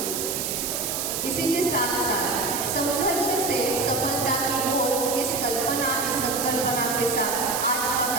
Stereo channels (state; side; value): noise; right; hiss, 2 dB below the sound